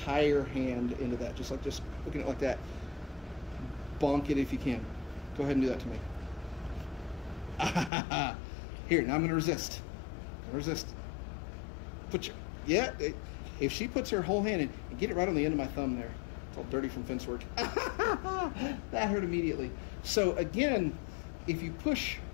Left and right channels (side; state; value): right; drops out; at 7.9 s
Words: hand into that, just looking at it like that. Bonk it if you can. Go ahead and do that to me. Here, now I'm going to resist. Resist. Put your, yeah, if she puts her whole hand in, and get it right on the end of my thumb there. It's all dirty from fence work. That hurt immediately. So again, if you push